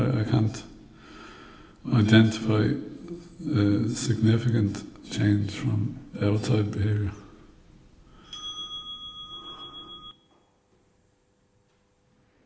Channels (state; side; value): identical; both; correlation 1.00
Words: can't identify a significant change from outside behaviour.